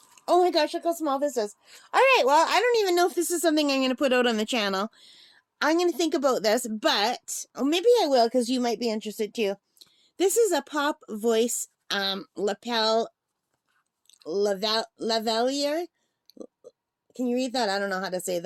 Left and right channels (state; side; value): identical; both; correlation 1.00